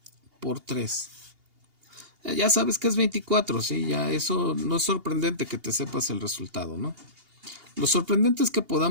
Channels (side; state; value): left; late; 2.8 ms